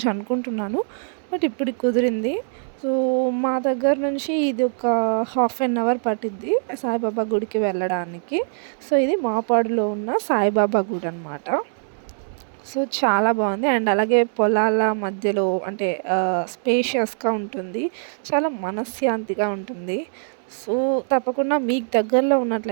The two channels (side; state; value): left; silent; digital silence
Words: అనుకుంటున్నాను, బట్ ఇప్పుడు కుదిరింది. సో మా దగ్గర నుంచి ఇది ఒక హాఫ్ అన్ అవర్ పట్టిద్ది సాయిబాబా గుడికి వెళ్ళడానికి. సో ఇది మాపాడులో ఉన్న సాయిబాబా గుడి అనమాట. సో చాలా బాగుంది. అండ్ అలాగే పొలాల మధ్యలో అంటే స్పేషియస్‌గా ఉంటుంది. చాలా మనశ్శాంతిగా ఉంటుంది. సో తప్పకుండా మీకు దగ్గరలో